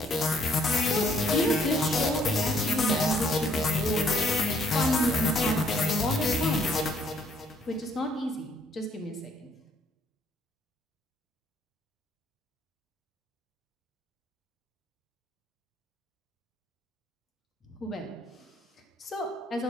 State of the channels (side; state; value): both; normal; correlation 0.66